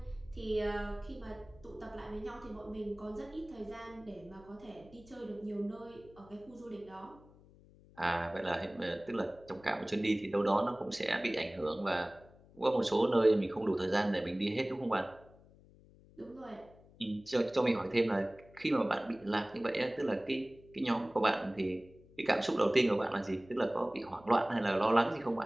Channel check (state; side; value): noise; left; hum, 25 dB below the sound